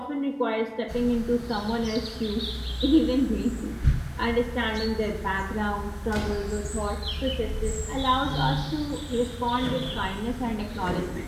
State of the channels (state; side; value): identical; both; correlation 1.00